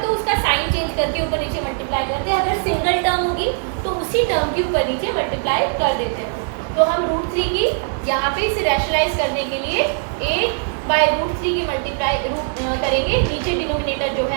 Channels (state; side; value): silent; left; 58 dB below the other